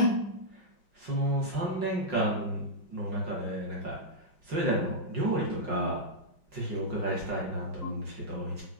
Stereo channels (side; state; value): left; late; 5.5 ms